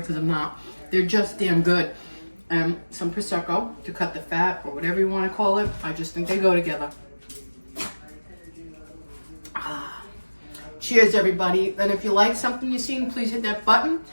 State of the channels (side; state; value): both; inverted; correlation -1.00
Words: I'm not. They're just damn good. Some Prosecco to cut the fat or whatever you want to call it. I just think they go together. Cheers, everybody. And if you like something you've seen, please hit that button